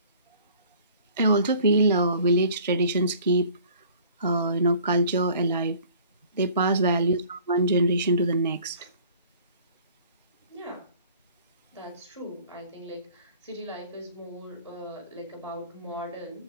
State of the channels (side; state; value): both; inverted; correlation -0.51